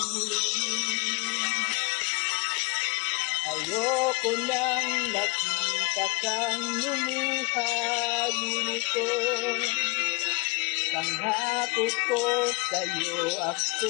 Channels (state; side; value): quieter; right; 27.5 dB